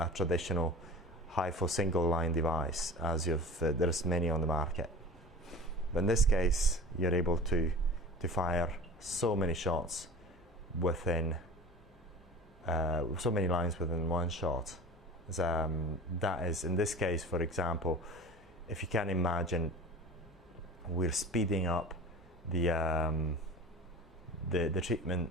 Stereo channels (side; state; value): both; normal; correlation 0.38